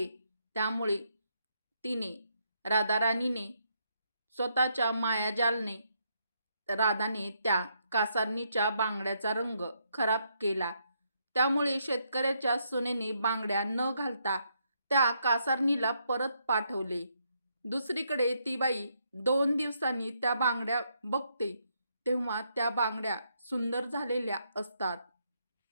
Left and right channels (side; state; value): both; inverted; correlation -0.76